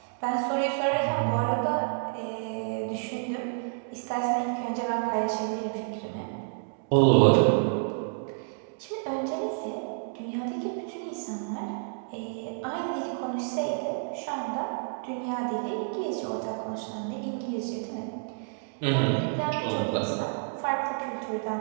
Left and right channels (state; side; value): silent; left; digital silence